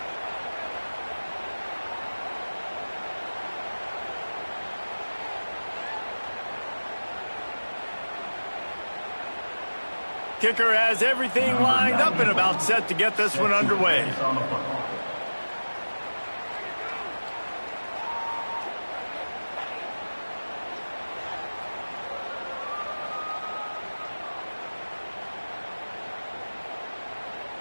Kicker has everything lined up and about set to get this one underway.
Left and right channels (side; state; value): both; inverted; correlation -1.00